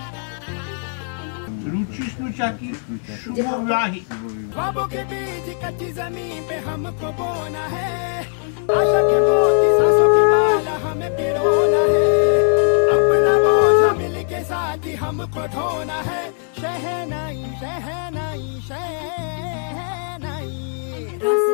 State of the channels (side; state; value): right; silent; 65 dB below the other